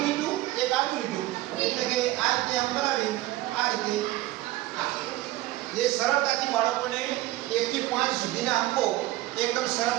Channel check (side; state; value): left; quieter; 17.2 dB